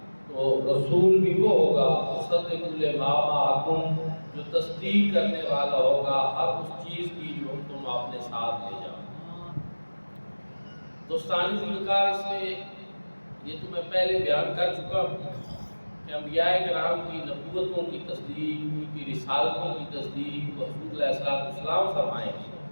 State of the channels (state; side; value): inverted; both; correlation -1.00